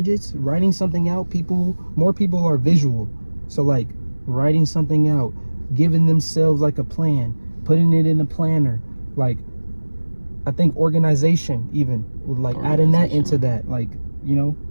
writing something out. More people are visual, so like writing something out, giving themselves like a plan, putting it in a planner. Like I think organization even with like adding that into that, like, you know,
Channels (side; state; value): both; inverted; correlation -1.00